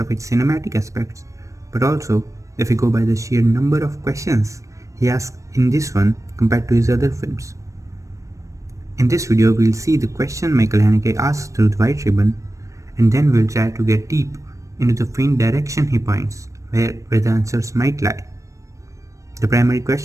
its cinematic aspects, but also if we go by the sheer number of questions he asks in this one compared to his other films. In this video, we'll see the question Michael Haneke asks through the White Ribbon, and then we'll try to get deep into the faint direction he points, where the answers might lie. The primary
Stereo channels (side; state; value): left; late; 0.15 ms